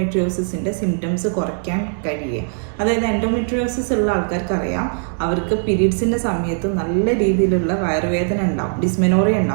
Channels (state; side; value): silent; left; digital silence